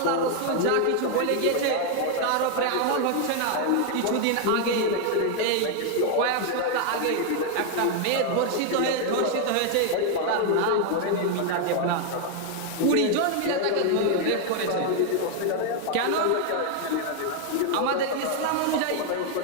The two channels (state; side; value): different; both; correlation 0.00